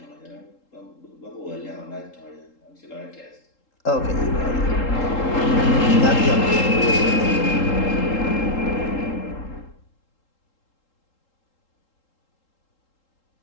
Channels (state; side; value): late; right; 3.8 ms